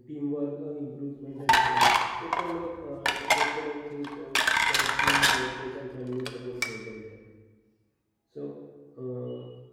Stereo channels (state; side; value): identical; both; correlation 1.00